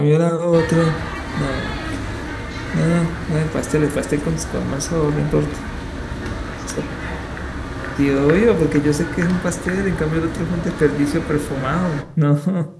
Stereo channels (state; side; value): identical; both; correlation 1.00